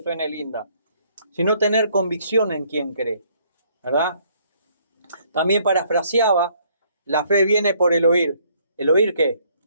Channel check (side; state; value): both; inverted; correlation -0.65